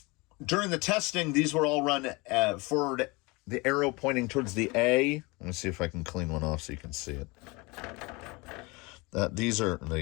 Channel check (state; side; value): quieter; right; 25.7 dB